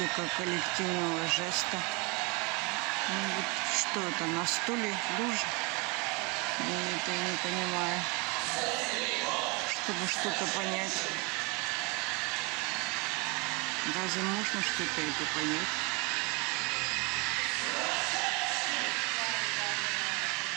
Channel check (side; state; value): left; quieter; 29.4 dB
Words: коллективного жеста. Ну вот что это, на стуле лужа? Это я не понимаю. Чтобы что-то понять. Разве можно что-то это понять?